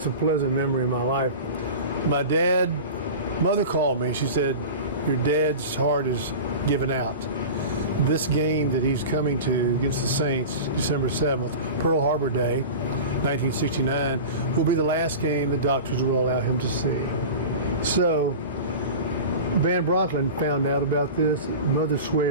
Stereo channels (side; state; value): both; inverted; correlation -0.32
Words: a pleasant memory in my life. Mother called me. She said, your dad's heart is given out. This game that he's coming to against the Saints, December 7th, Pearl Harbor Day, 1969, will be the last game the doctors will allow him to see. So Van Brocklin found out about this. Mother